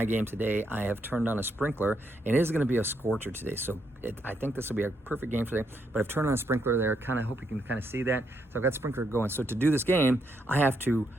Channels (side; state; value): both; normal; correlation 0.77